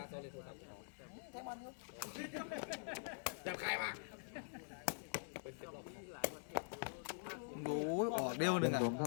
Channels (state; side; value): silent; right; digital silence